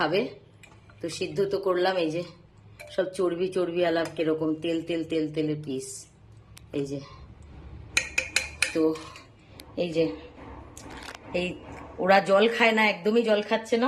তো সিদ্ধ তো করলাম। এই যে সব চর্বি চর্বি আলাপ, কিরকম তেল তেল তেল তেলের পিস। এই যে, তো এই যে, এই ওরা জল খায় না, একদমই জল খাচ্ছে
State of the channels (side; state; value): both; identical; correlation 1.00